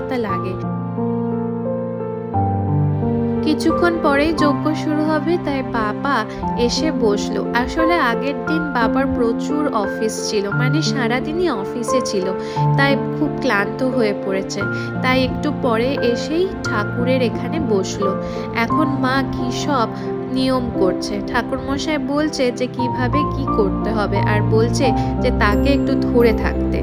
লাগে। কিছুক্ষণ পরেই যজ্ঞ শুরু হবে, তাই বাবা এসে বসলো। আসলে আগের দিন বাবার প্রচুর অফিস ছিল, মানে সারাদিনই অফিসে ছিল, তাই খুব ক্লান্ত হয়ে পড়েছে, তাই একটু পরে এসেই ঠাকুরের এখানে বসলো। এখন মা কি সব নিয়ম করছে, ঠাকুরমশাই বলছে যে কিভাবে কি করতে হবে, আর বলছে যে তাকে একটু ধরে থাকতে।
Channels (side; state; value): both; identical; correlation 1.00